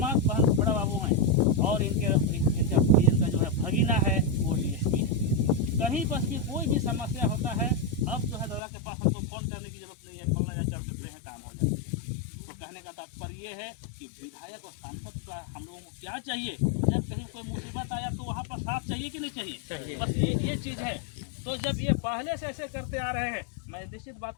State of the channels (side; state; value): right; drops out; at 8.6 s